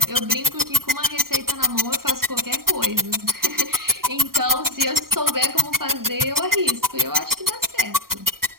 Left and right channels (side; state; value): left; late; 0.93 ms